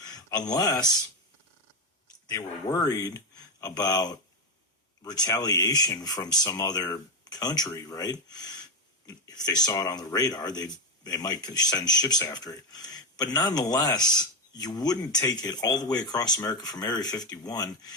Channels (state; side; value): normal; both; correlation 0.09